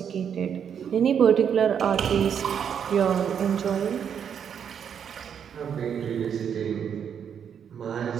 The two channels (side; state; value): left; quieter; 8.0 dB